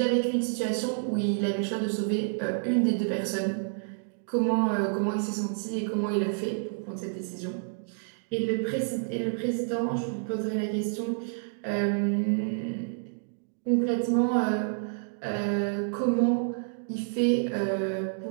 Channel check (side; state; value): left; silent; digital silence